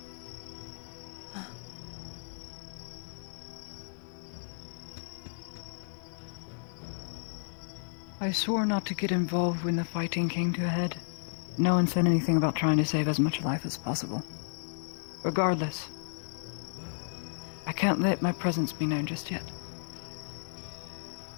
I swore not to get involved when the fighting came to a head. No one said anything about trying to save as much life as possible. Regardless, I can't let my presence be known just yet.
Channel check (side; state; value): right; silent; digital silence